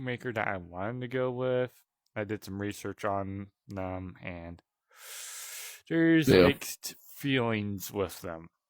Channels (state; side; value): identical; both; correlation 1.00